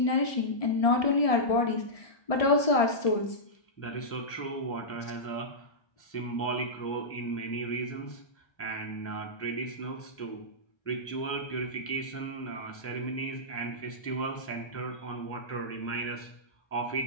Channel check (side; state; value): right; late; 1.6 ms